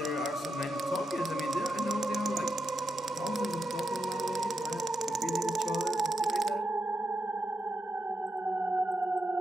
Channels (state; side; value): normal; both; correlation 0.85